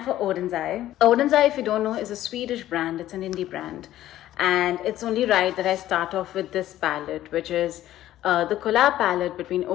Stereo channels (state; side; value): quieter; right; 13.6 dB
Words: for Oden's Eye. Oden's Eye, if you don't know, is a Swedish brand. It's an indie brand. And it's only right that I start off with this palette, which is the collab palette between